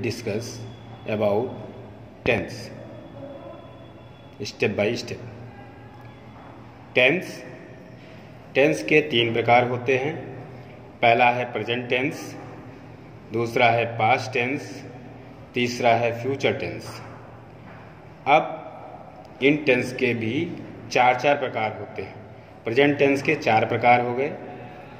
about tense, step by step. Tense के 3 प्रकार होते हैं। पहला है प्रेजेंट टेंस, दूसरा है पास्ट टेंस, तीसरा है फ्यूचर टेंस। अब इन टेंस के भी 4 प्रकार होते हैं। प्रेजेंट टेंस के 4 प्रकार हो गए।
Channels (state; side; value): identical; both; correlation 1.00